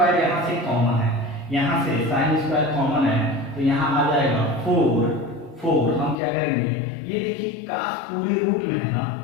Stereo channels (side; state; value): right; drops out; at 6.2 s